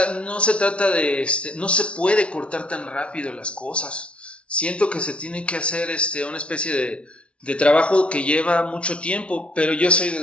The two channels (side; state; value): right; late; 0.060 ms